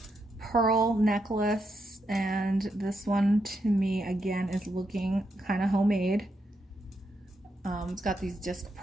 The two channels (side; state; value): both; normal; correlation 0.82